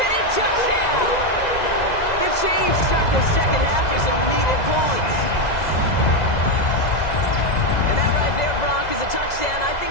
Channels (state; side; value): late; right; 2.0 ms